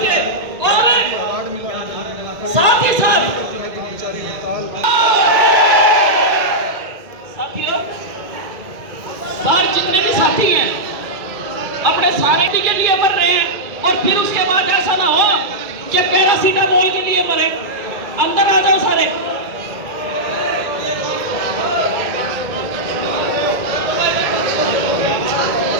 के, और साथ ही साथ साथियों, बाहर जितने भी साथी हैं अपने सारे के लिए मर रहे हैं और फिर उसके बाद ऐसा ना हो कि पैरासीटामोल के लिए मरे। अंदर आ जाओ सारे।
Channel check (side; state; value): left; late; 2.1 ms